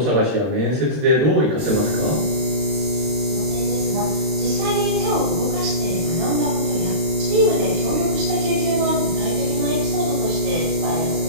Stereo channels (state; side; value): late; left; 28 ms